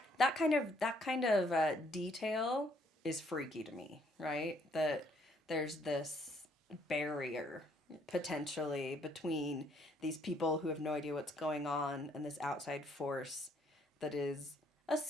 kind of detail is freaky to me, right? That there's this barrier potentially between these people who have no idea what's going on and this outside force that is a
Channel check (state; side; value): normal; both; correlation 0.67